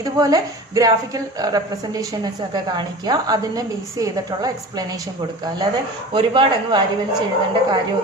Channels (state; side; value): normal; both; correlation 0.36